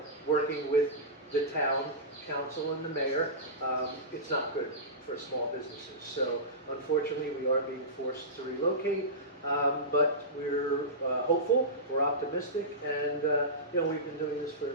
working with the town council and the mayor, it's not good for small businesses. So unfortunately, we are being forced to relocate, but we're hopeful, we're optimistic, and you know, we've been doing this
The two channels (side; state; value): both; normal; correlation -0.18